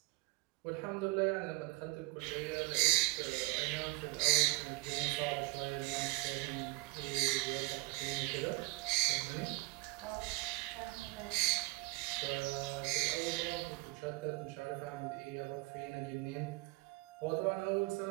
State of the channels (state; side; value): quieter; left; 24.8 dB